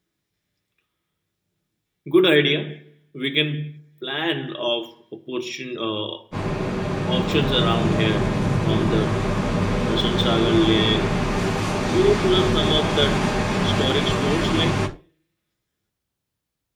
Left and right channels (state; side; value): identical; both; correlation 1.00